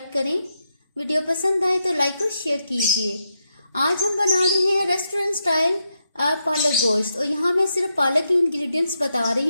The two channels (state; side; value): inverted; both; correlation -0.84